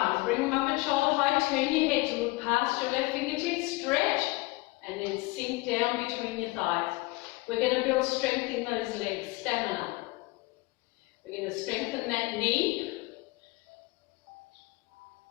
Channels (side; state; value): right; quieter; 22.9 dB